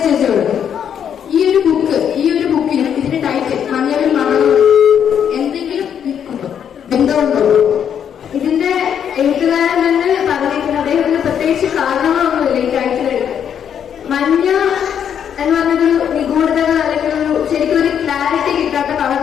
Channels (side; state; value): right; quieter; 8.5 dB